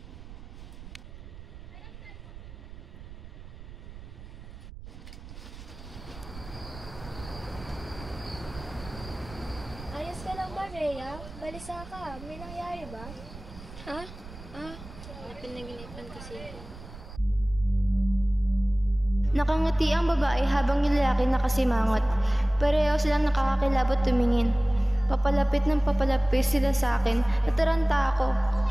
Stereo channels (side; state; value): right; noise; rumble, 15 dB below the sound